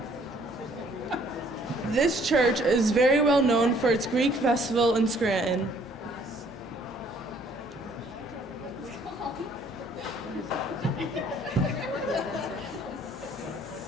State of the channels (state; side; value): normal; both; correlation 0.61